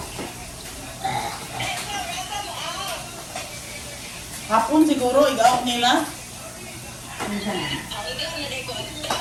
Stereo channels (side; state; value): both; identical; correlation 1.00